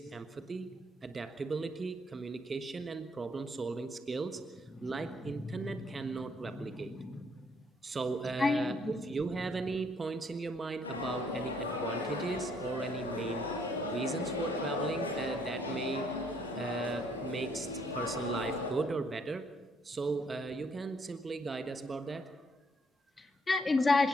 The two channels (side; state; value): both; normal; correlation 0.68